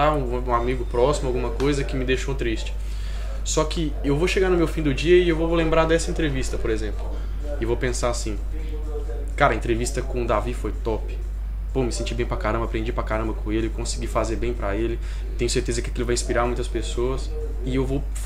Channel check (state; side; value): identical; both; correlation 1.00